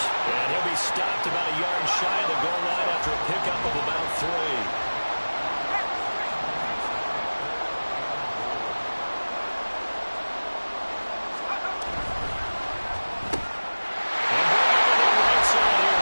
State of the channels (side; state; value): both; inverted; correlation -1.00